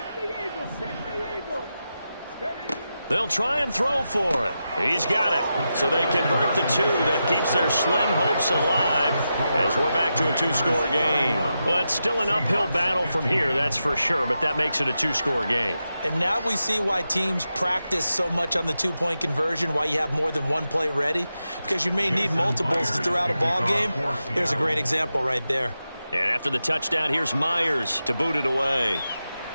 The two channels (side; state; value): both; inverted; correlation -0.89